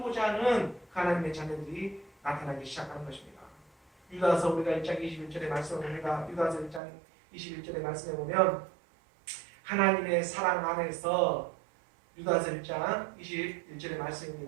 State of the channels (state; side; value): drops out; left; at 6.8 s